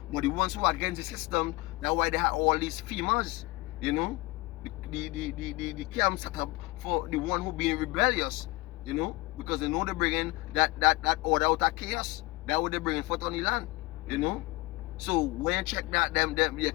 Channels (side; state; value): right; quieter; 22.7 dB